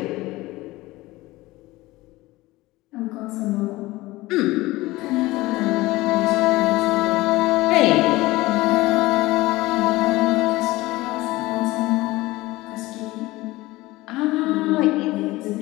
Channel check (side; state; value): right; quieter; 19.3 dB